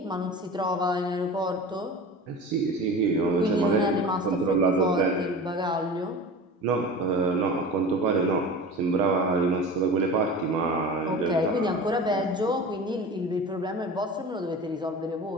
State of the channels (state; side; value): normal; both; correlation 0.34